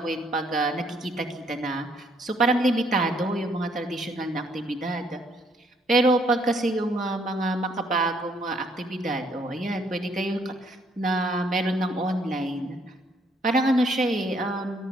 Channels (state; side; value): normal; both; correlation 0.68